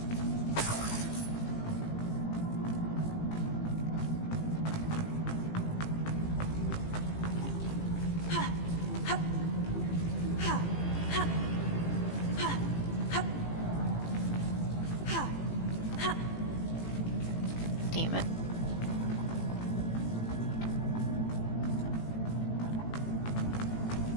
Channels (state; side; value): late; right; 18 ms